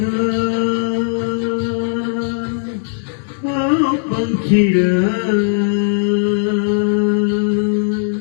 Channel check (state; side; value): silent; right; digital silence